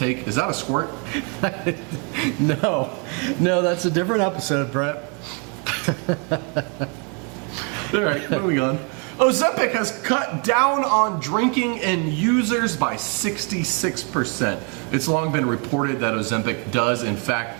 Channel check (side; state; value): left; quieter; 35.0 dB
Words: is that a squirt? No, that's a different episode, Brett. All right, moving on. Ozempic has cut down on drinking in users by 66%. It's long been reported that Ozempic does, in fact,